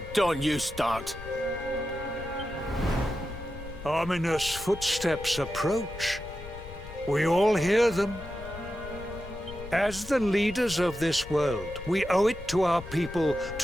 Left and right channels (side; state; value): left; noise; rumble, 13 dB below the sound